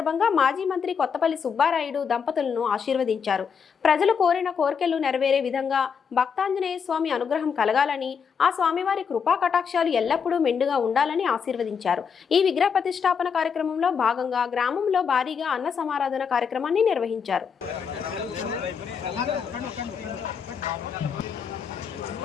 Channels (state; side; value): quieter; right; 6.6 dB